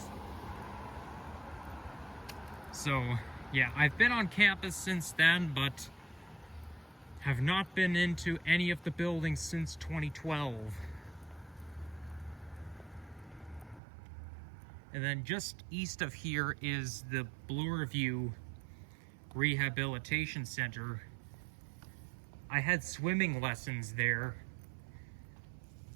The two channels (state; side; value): drops out; left; at 13.8 s